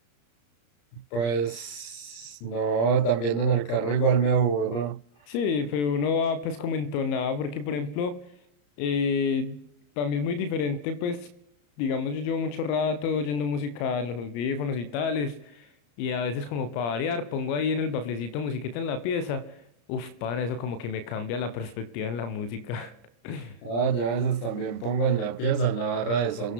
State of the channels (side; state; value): right; late; 34 ms